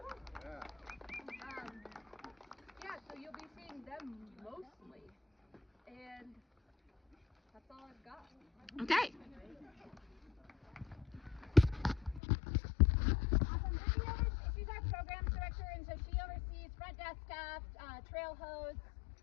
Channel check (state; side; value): drops out; right; at 12.2 s